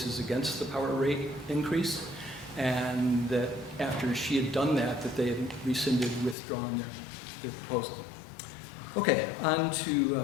against the power rate increase, and that after she had done that, that they had rescinded, withdrawn their proposal. Okay, on to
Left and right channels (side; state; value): right; drops out; at 6.4 s